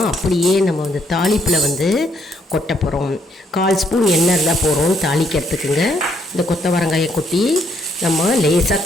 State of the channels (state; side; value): normal; both; correlation 0.70